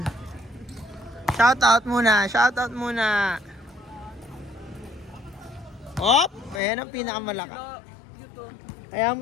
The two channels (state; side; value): drops out; right; at 6.6 s